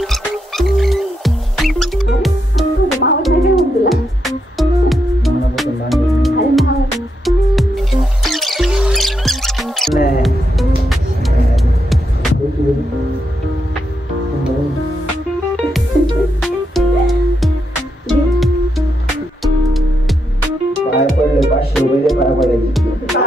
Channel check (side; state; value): both; normal; correlation 0.82